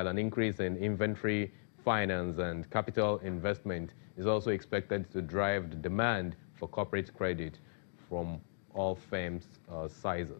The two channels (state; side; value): silent; right; digital silence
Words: an increase in inventory finance and capital investment is also expected to drive the demand for corporate credit from all firms'